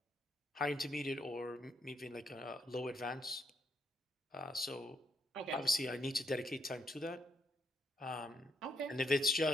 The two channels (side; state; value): both; normal; correlation 0.75